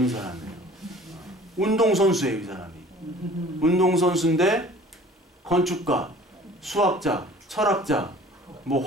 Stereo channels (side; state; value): both; normal; correlation 0.48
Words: 사람이에요. 운동선수예요, 이 사람이. 운동선수인데 건축가, 수학자, 철학자, 뭐